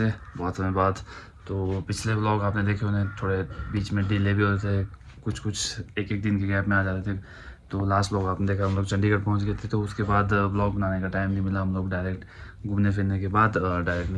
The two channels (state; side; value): identical; both; correlation 1.00